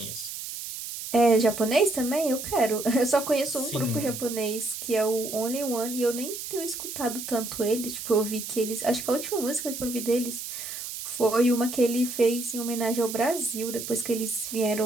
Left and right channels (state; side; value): noise; right; hiss, 8 dB below the sound